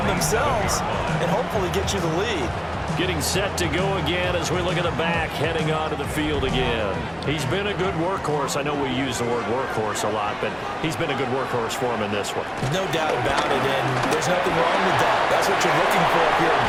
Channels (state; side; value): identical; both; correlation 1.00